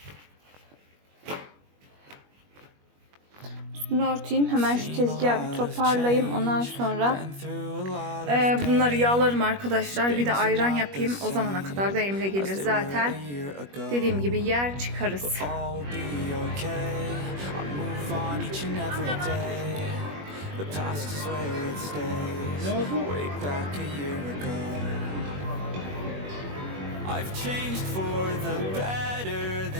üstünü örteyim. Hemen şu tezgahı bir toparlayayım. Ondan sonra bunları yağlarım arkadaşlar. Bir de ayran yapayım. O zamana kadar da Emre gelir zaten. Dediğim gibi yer çıkarız. The past is where it stays. Way back a year ago. I've changed for the better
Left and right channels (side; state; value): left; late; 21 ms